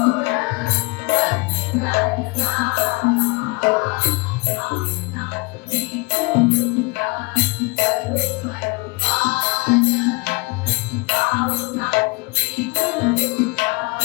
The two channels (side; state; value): right; quieter; 27.4 dB